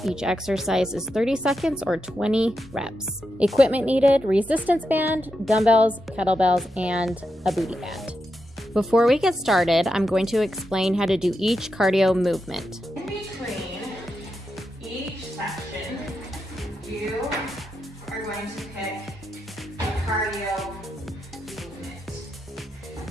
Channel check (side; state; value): both; normal; correlation 0.86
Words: Each exercise is 30 seconds or 20 reps. Equipment needed: resistance band, dumbbells, kettlebells, and a booty band. Before we get started, I'm going to explain how to do each cardio movement. In between each section, you are going to pick a cardio movement.